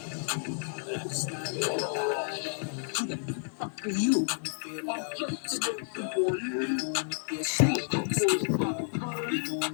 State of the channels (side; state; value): right; silent; digital silence